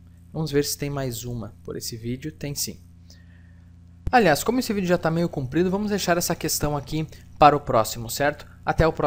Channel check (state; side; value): identical; both; correlation 1.00